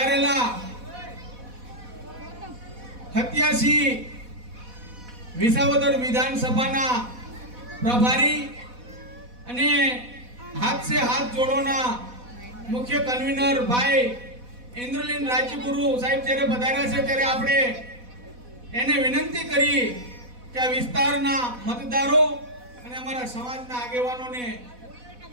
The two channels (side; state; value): left; late; 4.1 ms